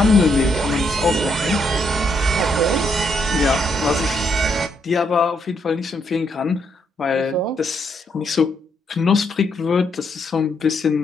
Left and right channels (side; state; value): both; normal; correlation 0.75